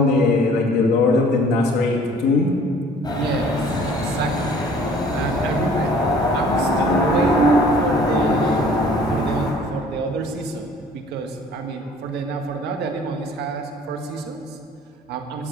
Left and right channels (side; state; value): both; normal; correlation 0.53